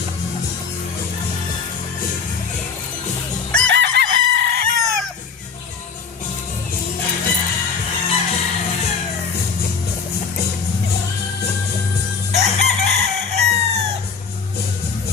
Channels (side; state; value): right; quieter; 5.5 dB